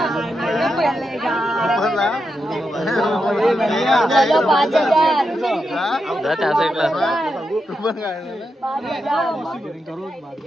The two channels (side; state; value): both; normal; correlation 0.86